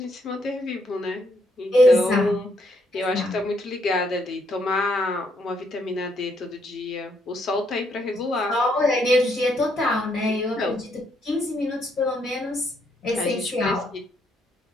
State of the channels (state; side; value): normal; both; correlation 0.73